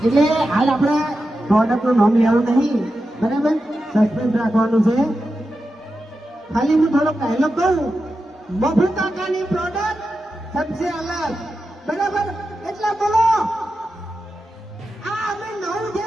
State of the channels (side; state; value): both; normal; correlation 0.90